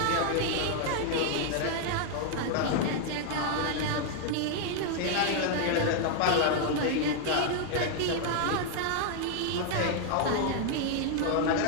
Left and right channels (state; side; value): different; both; correlation 0.00